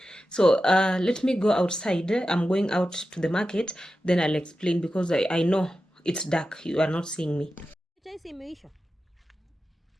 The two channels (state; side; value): normal; both; correlation 0.92